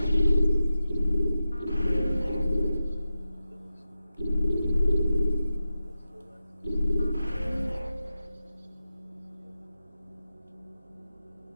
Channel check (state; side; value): inverted; both; correlation -0.92